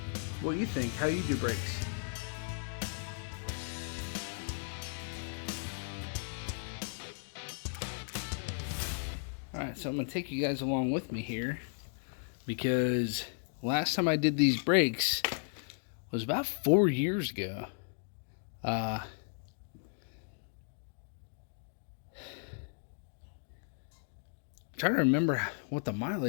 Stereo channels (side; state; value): right; silent; digital silence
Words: what you think, how you do brakes. Alright, so I'm gonna take you guys along with me here, because last time I did these brakes was about 4 years ago. Trying to remember what the